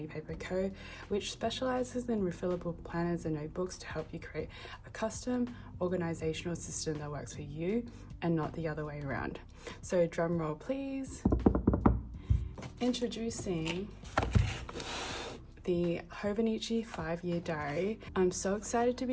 Paper Co, which specializes in refillable planners and notebooks to help you create a custom organizational system that works for you and not the other way around. So drum roll please. Introducing the Hobonichi 5-year diary. I'm so excited to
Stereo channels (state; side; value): identical; both; correlation 1.00